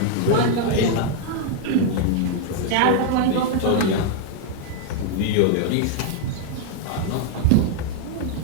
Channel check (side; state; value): both; different; correlation 0.00